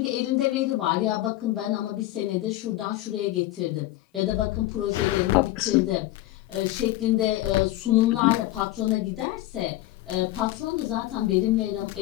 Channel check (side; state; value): right; quieter; 16.2 dB